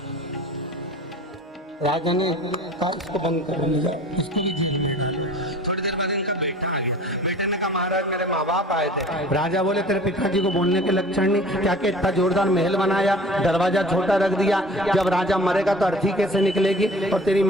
राजा ने कहा इसको बंद कर दिया, उसको भी जेल में डाला। थोड़ी देर बाद इनका बेटा आ गया। बेटे ने कहा महाराज मेरे माँ बाप आए थे। राजा बोले तेरे पिताजी को बोलने के लक्षण नहीं, क्या कि इतना जोरदार महल बनाया, दरवाजा छोटा रख दिया, जब राजा मरेगा तो अर्थी कैसे निकलेगी, और तेरी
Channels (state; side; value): normal; both; correlation 0.44